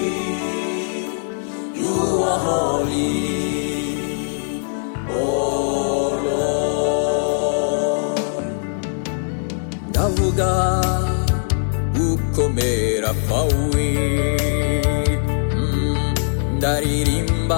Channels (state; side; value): silent; right; digital silence